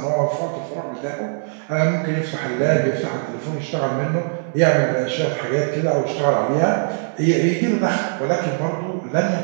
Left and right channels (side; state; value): left; silent; 65 dB below the other